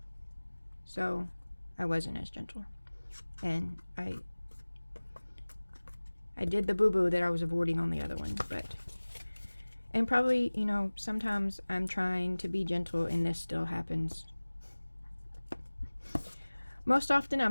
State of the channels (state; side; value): inverted; both; correlation -1.00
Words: so I wasn't as gentle, and I did the boo-boo that I was avoiding on the other one, and probably, you know, sometimes I'm trying to be gentle and this still happens. Most often